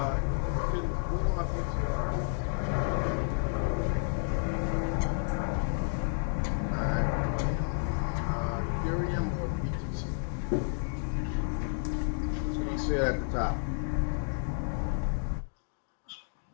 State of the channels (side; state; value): right; silent; digital silence